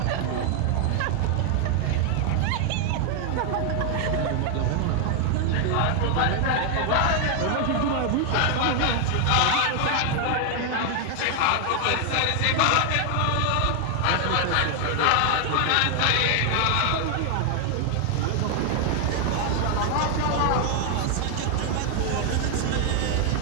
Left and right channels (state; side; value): different; both; correlation 0.00